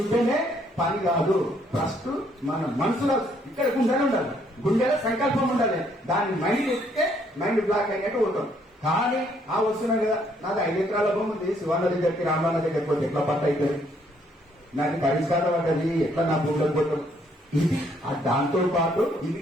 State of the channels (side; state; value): both; normal; correlation 0.68